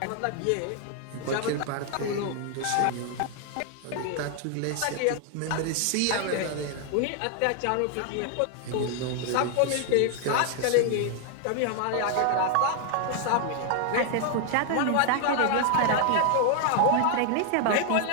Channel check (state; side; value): different; both; correlation 0.00